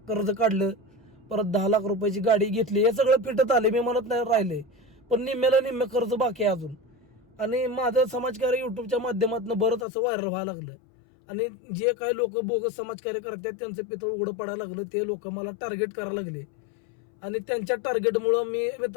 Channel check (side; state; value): right; drops out; at 9.9 s